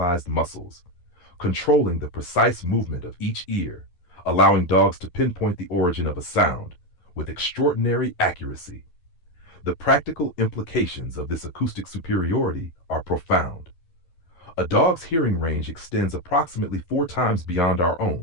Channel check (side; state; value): right; late; 11 ms